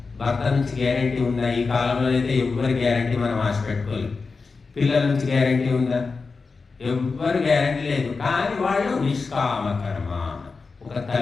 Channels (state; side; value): quieter; right; 4.4 dB